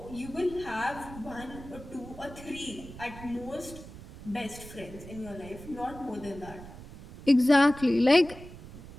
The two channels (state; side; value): noise; right; rumble, 15 dB below the sound